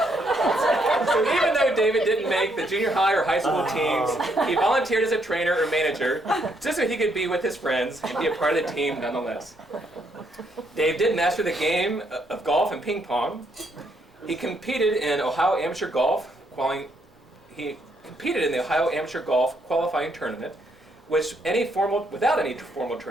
So even though David didn't make the junior high or high school teams, he volunteered as a trainer or manager just so he could be with his friends and be a part of the team nonetheless. Dave did master the game of golf and ping pong. He competed in Ohio Amateur Golf qualifying tournament, which without any formal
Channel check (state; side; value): normal; both; correlation 0.73